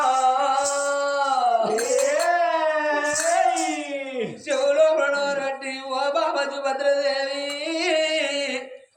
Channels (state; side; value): identical; both; correlation 1.00